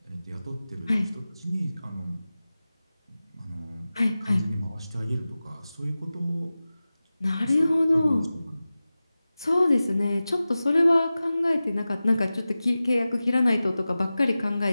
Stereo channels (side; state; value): both; inverted; correlation -0.96